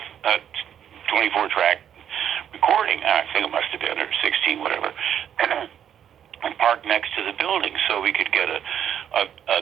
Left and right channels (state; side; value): quieter; left; 9.4 dB